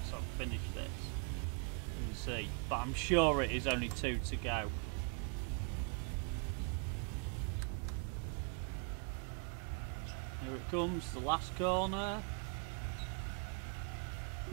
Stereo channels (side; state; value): left; quieter; 39.4 dB